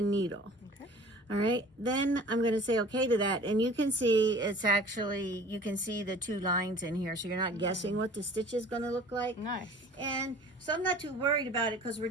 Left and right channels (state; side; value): normal; both; correlation 0.46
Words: needle. All right, then I'm going to say okay to that, and you can see it's actually, you can see the 2 lines in here, so you're not guessing what the stitch is going to look like. Nice. And so I'm not too worried about it because we're